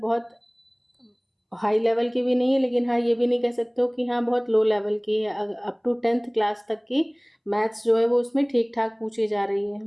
हाई लेवल की भी नहीं है, लेकिन हाँ ये भी नहीं कह सकते हो कि हाँ बहुत लो लेवल की है। अप टू 10th क्लास तक की मैथ्स जो है वो उसमें ठीक ठाक पूछी जा रही है,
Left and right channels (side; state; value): both; identical; correlation 1.00